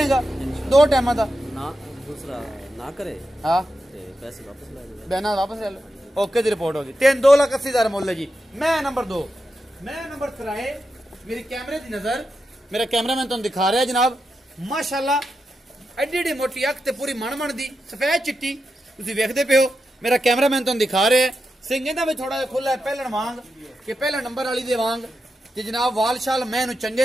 2 ਟਾਈਮਾਂ ਦਾ ਨਾ ਦੂਸਰਾ ਨਾ ਕਰੇ ਹਾਂ ਤੇ ਪੈਸੇ ਵਾਪਸ ਲੈ ਲੈ ਬਿਆਨਾ ਵਾਪਸ ਲੈ ਲਓ ਓਕੇ ਦੀ ਰਿਪੋਰਟ ਹੋ ਗਈ 2,80,000 ਮੁੱਲ ਹੈ ਜੀ ਮੈਂ ਨੰਬਰ 2 ਮੈਂ ਨੰਬਰ 3 ਮੇਰੀ ਕੈਮਰੇ ਦੀ ਨਜ਼ਰ ਮੇਰਾ ਕੈਮਰਾਮੈਨ ਤੁਹਾਨੂੰ ਦਿਖਾ ਰਿਹਾ ਜਨਾਬ ਮਾਸ਼ਾਅੱਲਾ ਐਡੀ ਮੋਟੀ ਅੱਖ ਤੇ ਪੂਰੀ ਮਣ ਦੀ ਸਫੈਦ ਚਿੱਟੀ ਤੁਸੀਂ ਵੇਖਦੇ ਪਿਓ ਮੇਰਾ ਕੈਮਰਾਮੈਨ ਤੁਹਾਨੂੰ ਦਿਖਾ ਰਿਹਾ ਸਿੰਘ ਇਹਦਾ ਵੀ ਥੋੜਾ ਜਿਹਾ ਖੁੱਲਾ ਪਹਿਲਣ ਵਾਂਗ ਕਿ ਪਹਿਲਾ ਨੰਬਰ ਵਾਲੀ ਦੇ ਵਾਂਗ ਤੇ ਜਨਾਬ ਵਾਲਸ਼ਾਲ ਮੈਂ ਇਹਨੂੰ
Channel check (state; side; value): normal; both; correlation 0.88